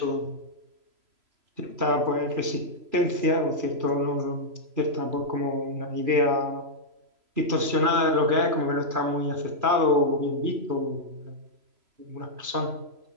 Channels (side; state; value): left; late; 3.0 ms